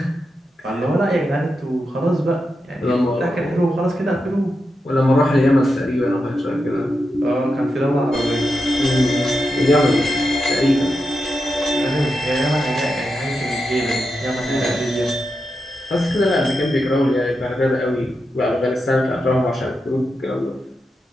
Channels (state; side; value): normal; both; correlation 0.87